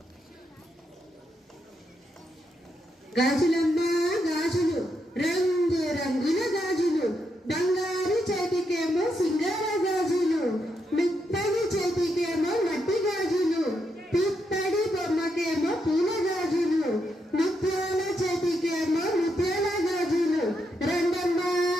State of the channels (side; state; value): both; normal; correlation 0.81